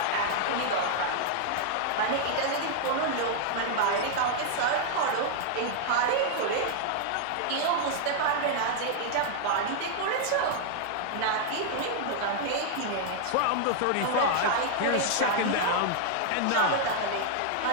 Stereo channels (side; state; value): both; different; correlation 0.00